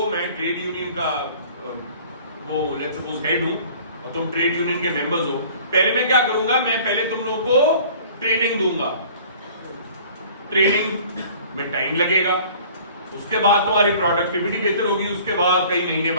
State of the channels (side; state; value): both; inverted; correlation -0.49